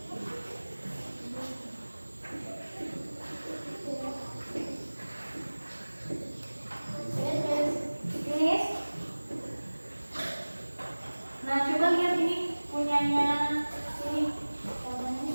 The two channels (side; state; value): both; inverted; correlation -1.00